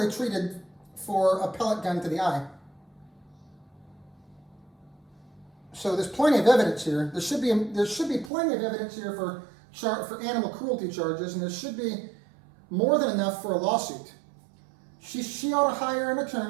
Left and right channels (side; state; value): left; drops out; at 8.3 s